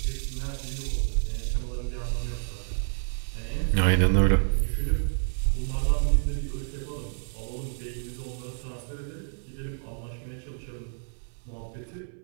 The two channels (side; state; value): left; silent; 59 dB below the other